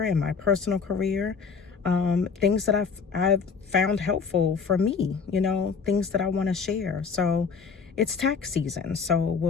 and my personal career. Things that I've found helpful for me, things that I want to share. So it's tax season, so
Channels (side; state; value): right; quieter; 5.6 dB